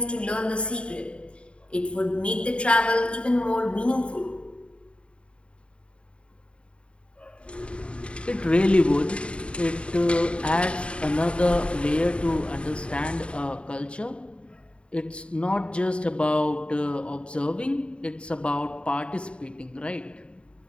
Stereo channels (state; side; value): late; right; 0.057 ms